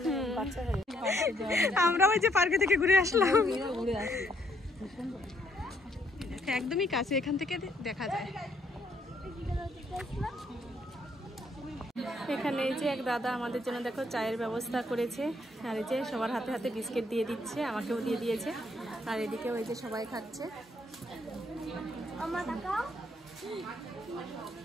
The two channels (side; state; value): both; normal; correlation 0.70